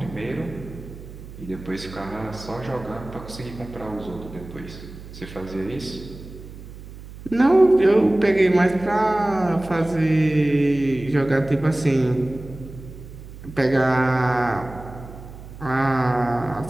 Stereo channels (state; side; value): noise; right; hum, 15 dB below the sound